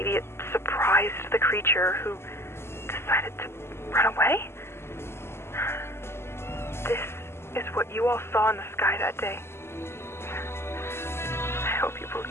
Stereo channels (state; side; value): late; right; 0.12 ms